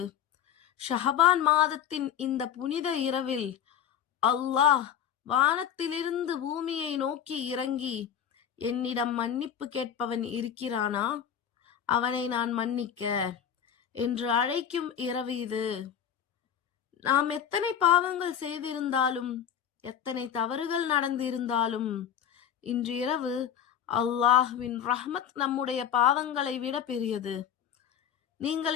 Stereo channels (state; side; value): quieter; right; 8.9 dB